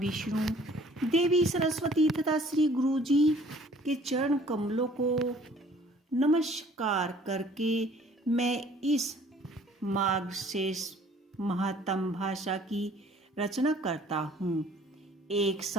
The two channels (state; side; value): normal; both; correlation 0.55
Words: देवी सरस्वती तथा श्री गुरु जी के चरण कमलों को नमस्कार करके मैं इस मार्गशीर्ष महात्म भाषा की रचना करता हूँ। एक